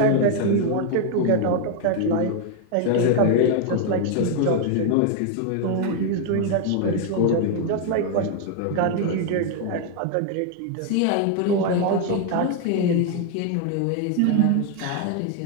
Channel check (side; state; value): both; different; correlation 0.01